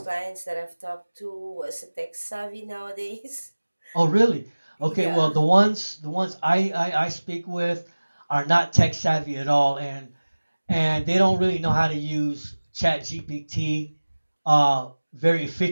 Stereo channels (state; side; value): inverted; both; correlation -1.00